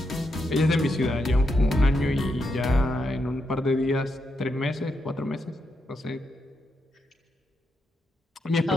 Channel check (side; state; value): both; normal; correlation 0.82